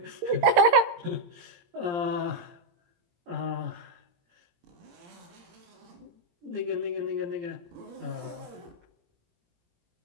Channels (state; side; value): late; left; 17 ms